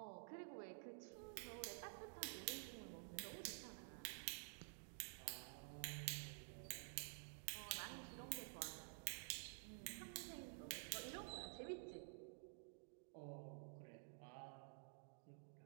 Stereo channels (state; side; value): silent; left; digital silence